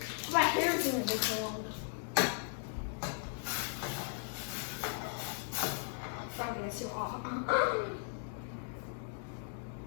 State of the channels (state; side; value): silent; right; digital silence